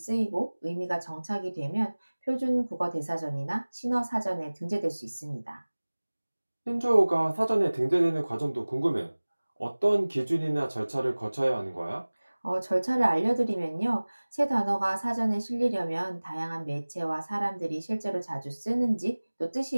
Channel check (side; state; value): both; inverted; correlation -1.00